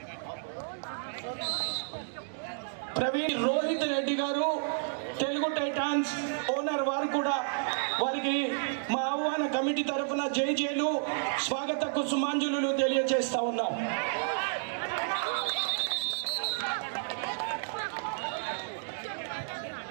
ప్రవీణ్ రోహిత్ రెడ్డి గారు తెలుగు టైటాన్స్ ఓనర్, వారు కూడా వారికి మా ఆహ్వాన కమిటీ తరఫున జైలు స్వాగత కుసుమాంజలు తెలియజేస్తా ఉన్నాం.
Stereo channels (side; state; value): left; silent; digital silence